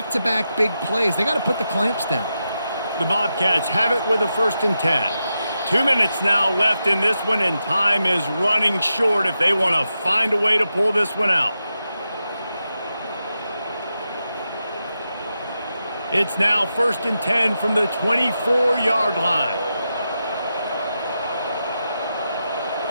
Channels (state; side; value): inverted; both; correlation -0.88